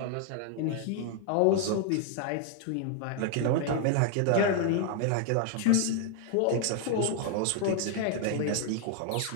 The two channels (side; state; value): both; different; correlation 0.00